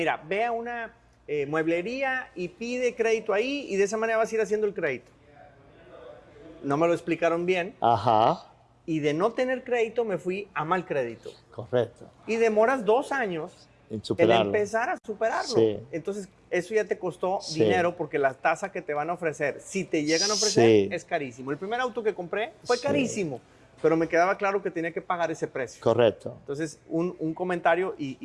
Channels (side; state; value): both; identical; correlation 1.00